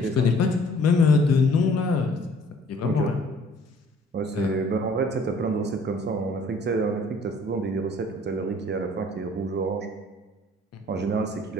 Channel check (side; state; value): both; normal; correlation 0.56